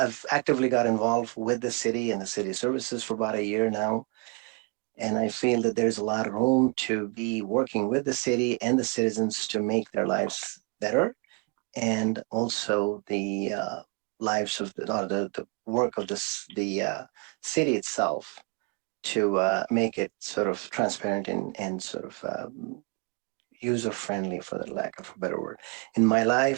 actively got involved with the city and the city services for about a year now. And I feel that there's a lot of room to be working with the city and the citizens to make their lives better. And also the lives of the work of the city itself to make it sort of transparent and sort of user-friendly, for the lack of a better word. In my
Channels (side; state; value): left; quieter; 32.1 dB